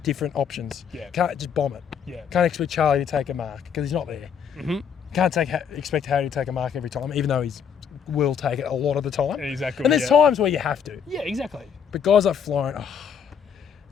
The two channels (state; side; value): quieter; right; 7.4 dB